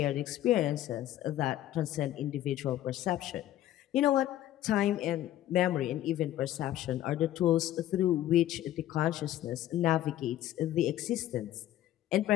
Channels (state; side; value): quieter; right; 13.2 dB